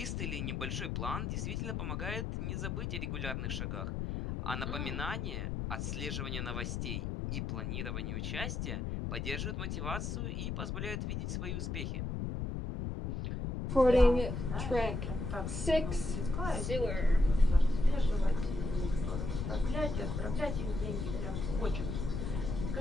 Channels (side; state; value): left; noise; rumble, 2 dB below the sound